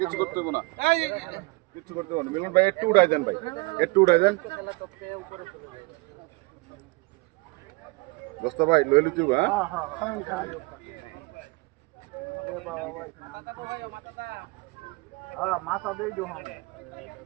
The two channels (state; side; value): quieter; left; 25.5 dB